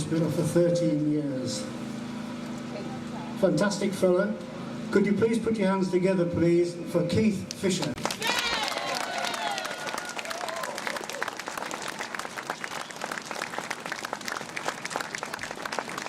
for 13 years. Fantastic fella. Could you please put your hands together, please, for Keith Fisher.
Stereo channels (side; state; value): both; identical; correlation 1.00